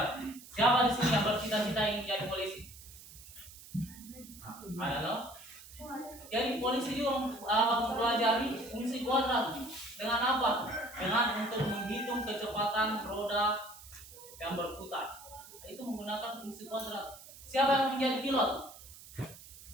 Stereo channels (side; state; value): right; noise; hiss, 18 dB below the sound